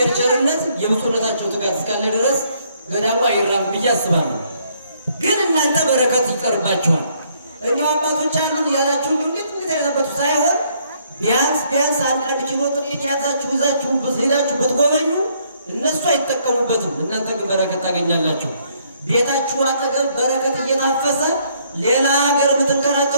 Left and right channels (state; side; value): inverted; both; correlation -0.67